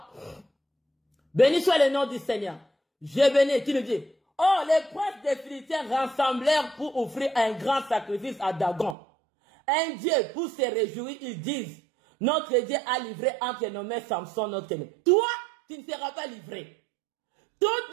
Béni soit le nom du Seigneur. Je bénis, tu nous dis. Oh, les princes des Philistins rassemblèrent pour offrir un grand sacrifice à Dagon. Un Dieu, pour se réjouir, ils disent, notre Dieu a livré entre nos mains Samson, notre ennemi. Toi, tu ne seras pas livré. Toutes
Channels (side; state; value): left; drops out; at 9.0 s